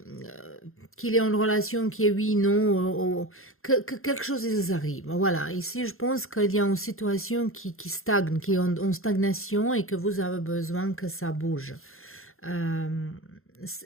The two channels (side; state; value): right; late; 0.61 ms